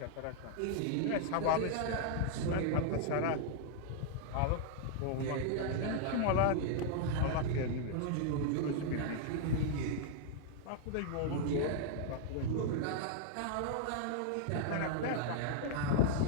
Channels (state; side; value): different; both; correlation -0.01